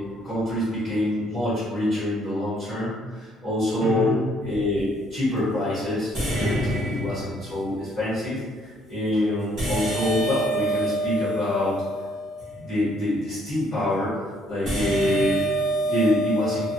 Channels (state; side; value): normal; both; correlation 0.66